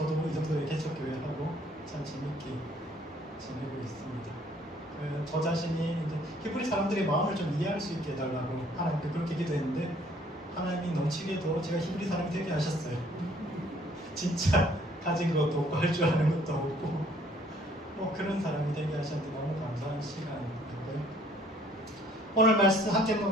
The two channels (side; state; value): both; normal; correlation 0.60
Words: 이 정도의 개척교회하고 참 재밌게 지내고 있습니다. 저 자신이 이제 히브리 사람들의 마음을 좀 이해할 수 있게 해달라고 하나님께 그렇게 기도했는데 하나님이 넘치게도 제가 히브리 사람이 되게 하셨어요. 진짜 가진 것도 없고 할 줄 아는 것도 없고 뭐 그런 사람이 되게 하셨는데 너무 감사한 시간이고요. 오늘 말씀 함께